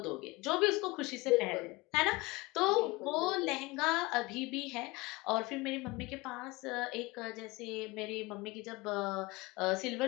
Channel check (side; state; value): right; quieter; 22.8 dB